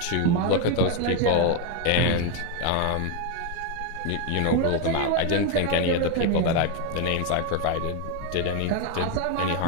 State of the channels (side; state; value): both; different; correlation 0.02